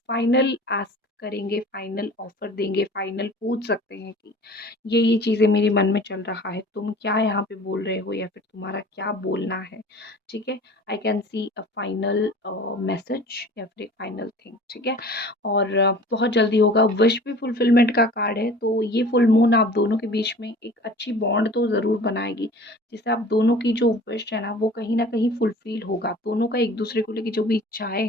फाइनल आस्क करेंगे, फाइनल ऑफ़र देंगे, फाइनल पूछ सकते हैं कि ये चीज़ें मेरे मन में चल रहा है, तुम क्या यहाँ पे बोल रहे हो या फिर तुम्हारा क्या बोलना है, ठीक है? I can see a final message या फिर एक फाइनल थिंग, ठीक है? और बहुत जल्दी होगा। विश भी फुलफिलमेंट का कार्ड है, तो ये फुल मून आप दोनों के बीच में एक अच्छी बॉन्ड तो ज़रूर बनाएगी, जिससे आप दोनों की जो विश है ना, वो कहीं न कहीं फुलफ़िल होगा। दोनों का एक-दूसरे को लेके जो भी इच्छाएँ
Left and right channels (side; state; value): both; normal; correlation 0.44